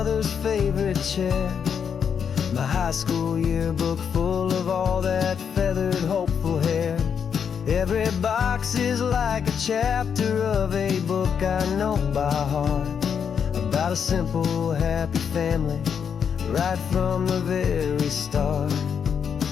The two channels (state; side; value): quieter; right; 7.2 dB